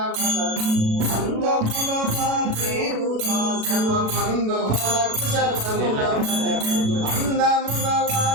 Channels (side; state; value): left; late; 36 ms